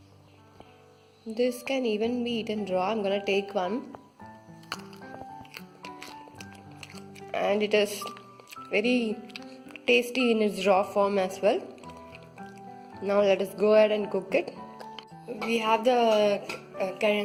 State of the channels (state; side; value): identical; both; correlation 1.00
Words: This can even be eaten raw. I'm gonna take one, and it is very tasty in its raw form as well. Now let us go ahead and cook it. We have the